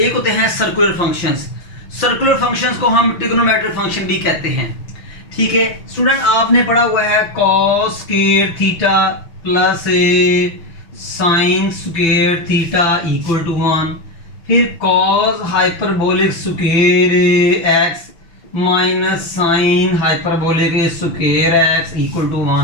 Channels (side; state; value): right; late; 5.9 ms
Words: होते हैं सर्कुलर फंक्शंस। सर्कुलर फंक्शंस को हम ट्रिग्नोमेट्रिक फंक्शन भी कहते हैं, ठीक है। स्टूडेंट आपने पढ़ा हुआ है cos square theta plus sine square theta equal to 1, फिर cos hyperbolic square x minus sine hyperbolic square x equal to